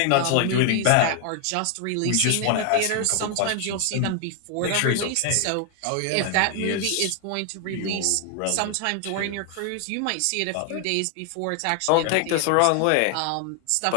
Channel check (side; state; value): both; different; correlation 0.00